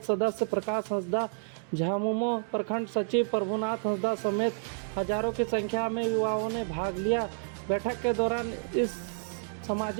सदस्य प्रकाश हंसदा, झामुमो प्रखंड सचिव प्रभुनाथ हंसदा समेत हजारों की संख्या में युवाओं ने भाग लिया। बैठक के दौरान इस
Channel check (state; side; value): silent; left; digital silence